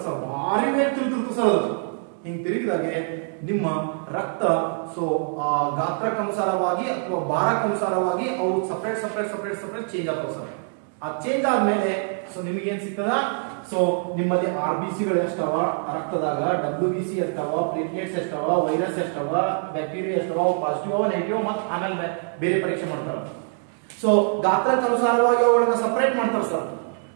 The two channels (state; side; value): silent; left; 59 dB below the other